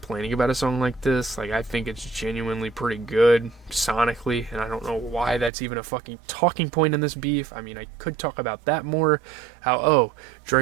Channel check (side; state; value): left; drops out; at 5.5 s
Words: about a song like this. Like, I think it's genuinely pretty good sonically, and I don't know why that's even a fucking talking point in this beef. I mean, I could talk about that more. How, oh,